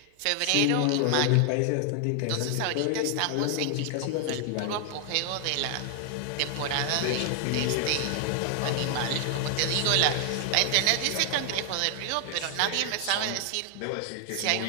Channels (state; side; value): different; both; correlation 0.00